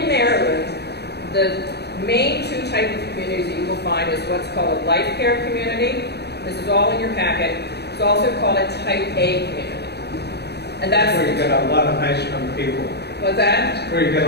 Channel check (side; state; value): right; late; 0.48 ms